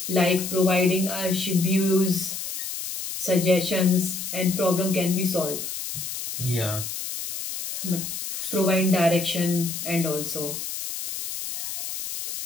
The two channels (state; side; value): noise; left; hiss, 6 dB below the sound